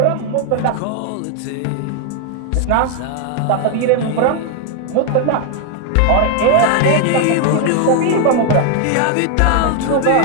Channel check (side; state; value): both; different; correlation 0.00